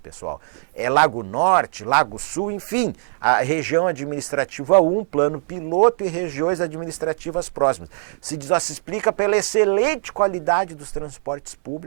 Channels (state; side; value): silent; left; digital silence